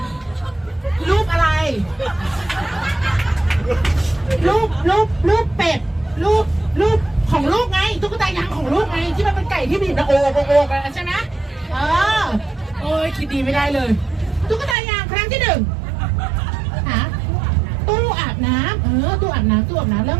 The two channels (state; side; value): drops out; left; at 14.8 s